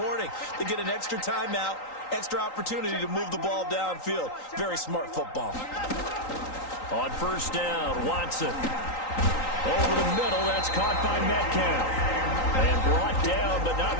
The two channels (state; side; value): late; right; 3.8 ms